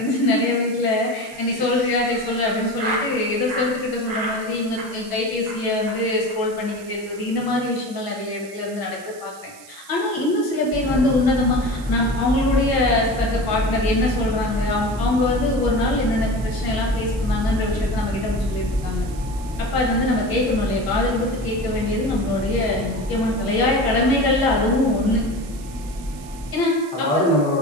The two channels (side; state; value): right; noise; hiss, 20 dB below the sound